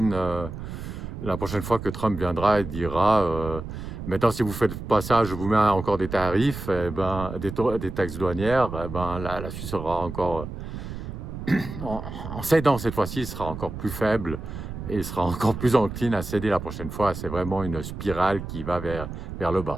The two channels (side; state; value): right; noise; rumble, 8 dB below the sound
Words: fois que Trump viendra et dira maintenant, si vous faites pas ça, je vous mets encore des tarifs, des taxes douanières, la Suisse sera encore, en cédant cette fois-ci, sera encore plus faible et sera encore plus encline à céder la prochaine fois. C'est vraiment une spirale qui va vers le